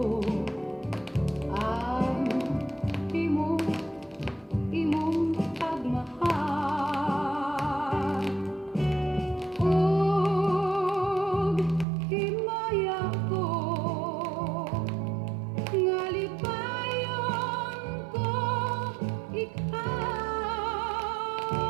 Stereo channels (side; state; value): left; drops out; at 11.9 s